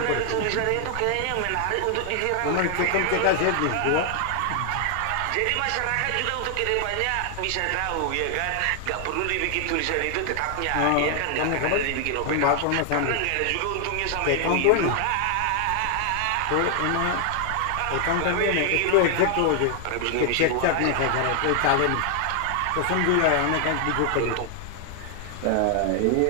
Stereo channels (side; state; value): both; different; correlation 0.00